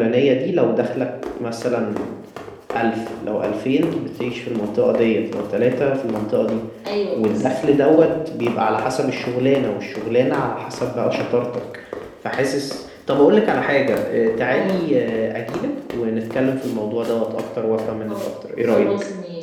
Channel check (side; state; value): both; identical; correlation 1.00